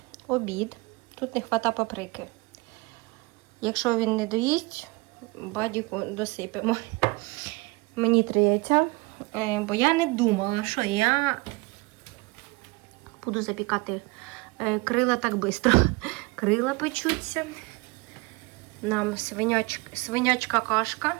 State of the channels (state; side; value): quieter; left; 25.0 dB